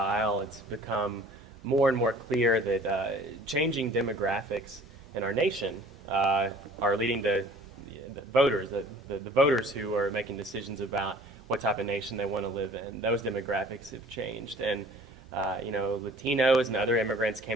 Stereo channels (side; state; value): both; normal; correlation 0.50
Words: it's become more and more clear that changing demographics in our nation are leading to the voters, the voters who are making decisions about what type of nation they want to live in. Those demographics have changed, and Latinos and other immigrants